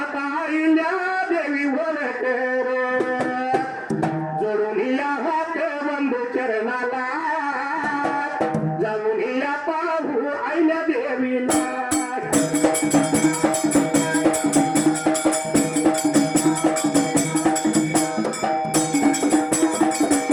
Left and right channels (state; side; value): identical; both; correlation 1.00